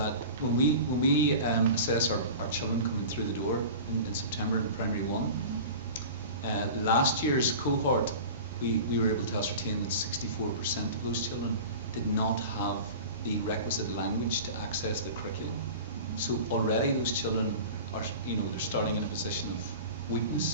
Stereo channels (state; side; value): inverted; both; correlation -0.35